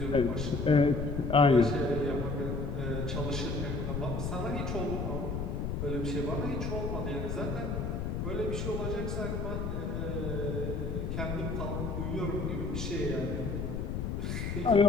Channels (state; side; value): noise; left; rumble, 2 dB below the sound